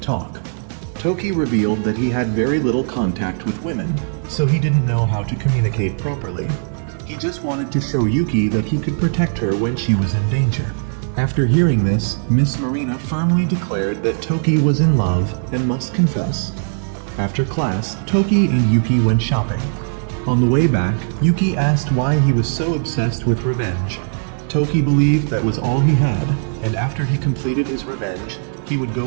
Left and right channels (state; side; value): silent; left; 62 dB below the other